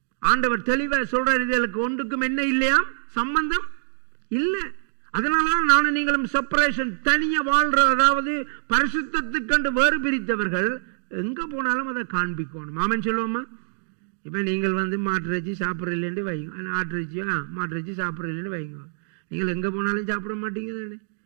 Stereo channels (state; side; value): silent; left; digital silence